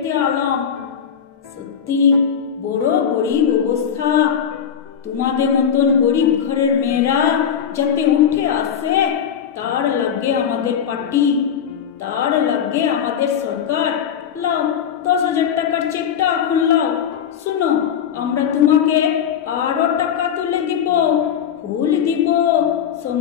আলাম। সত্যি বড় গরিব অবস্থা। তোমাদের মতন গরিব ঘরের মেয়েরা যাতে উঠে আসে তার লাগে আমাদের পার্টি, তার লাগে আমাদের সরকার। লাও 10,000 টাকার চেকটা এখন লাও। শুনো, আমরা তোমাকে আরো টাকা তুলে দিব, ফুল দিব,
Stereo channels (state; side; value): quieter; right; 8.2 dB